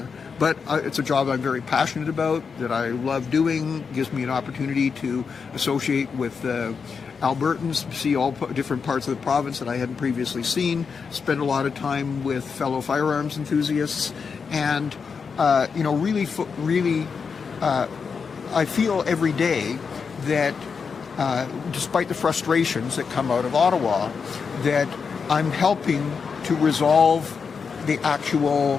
But it's a job I'm very passionate about, that I love doing, gives me an opportunity to associate with Albertans, see all different parts of the province that I hadn't previously seen, spend a lot of time with fellow firearms enthusiasts, and really, I feel every day that despite the frustrations that come out of Ottawa, that I'm helping to resolve the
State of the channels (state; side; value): quieter; right; 5.7 dB